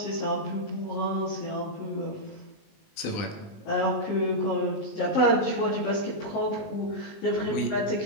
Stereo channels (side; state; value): right; late; 19 ms